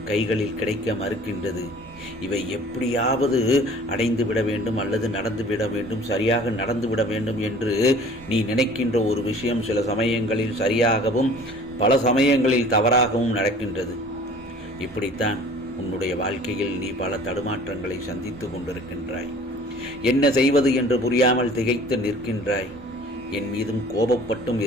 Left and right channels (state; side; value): normal; both; correlation 0.48